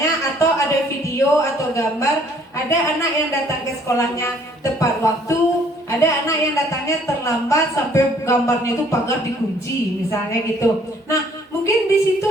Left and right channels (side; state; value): both; normal; correlation 0.60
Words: atau ada video atau gambar, ada anak yang datang ke sekolahnya tepat waktu, ada anak yang datangnya terlambat sampai gambarnya itu pagar dikunci misalnya gitu. Nah, mungkin di situ